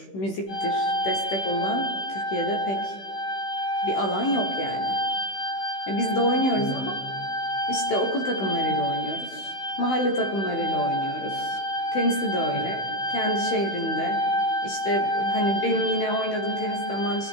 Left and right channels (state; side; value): late; right; 16 ms